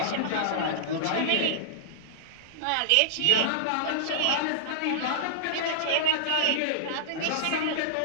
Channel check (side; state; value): both; different; correlation -0.01